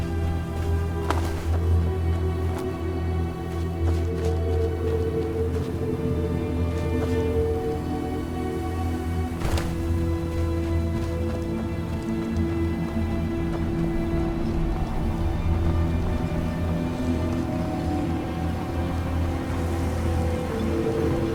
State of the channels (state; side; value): identical; both; correlation 1.00